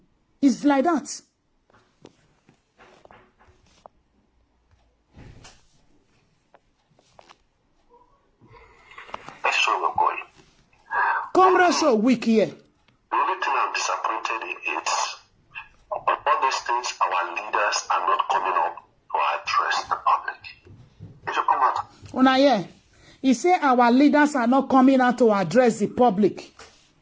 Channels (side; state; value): both; identical; correlation 1.00